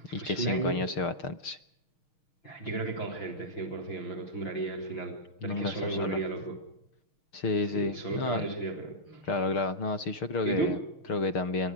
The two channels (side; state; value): right; late; 6.3 ms